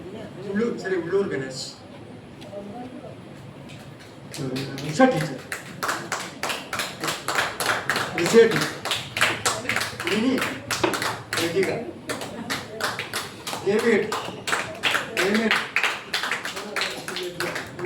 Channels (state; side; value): identical; both; correlation 1.00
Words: ഉള്ളൂർ ഗണേശ്, ഉഷ ടീച്ചർ, വിജയ ടീച്ചർ, മിനി, ലതിക,